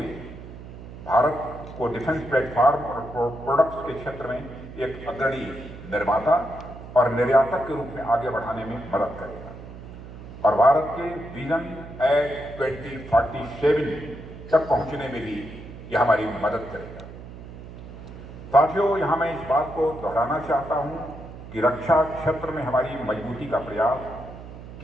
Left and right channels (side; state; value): right; noise; hum, 14 dB below the sound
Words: भारत को डिफेंस प्लेटफॉर्म और प्रोडक्ट्स के क्षेत्र में एक अग्रणी निर्माता और निर्यातक के रूप में आगे बढ़ाने में मदद करेगा और भारत के विजन एट 2047 तक पहुंचने में भी यह हमारी मदद करेगा। साथियों, यहां मैं इस बात को दोहराना चाहता हूं कि रक्षा क्षेत्र में हमारी मजबूती का प्रयास